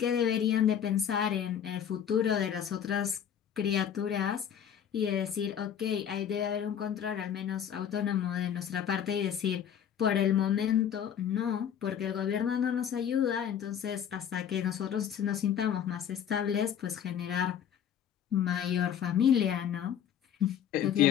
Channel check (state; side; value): quieter; right; 9.0 dB